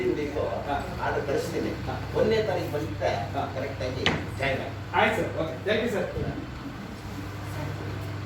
ವೀಕು ಆರ್ಡರ್ ಕಳಿಸ್ತೀನಿ. 1ನೇ ತಾರೀಕು ಬಂದಿದ್ದೆ ಕರೆಕ್ಟಾಗಿ ಜಾಯ್ನ್ ಆಗಿ. ಆಯ್ತು sir, okay, thank you sir.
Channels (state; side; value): identical; both; correlation 1.00